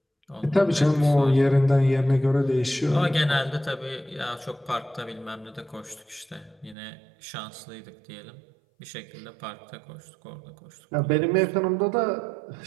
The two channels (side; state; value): left; drops out; at 6.8 s